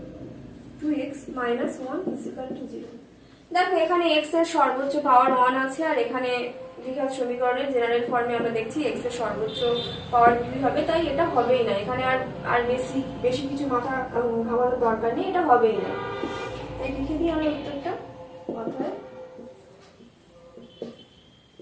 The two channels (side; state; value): both; identical; correlation 1.00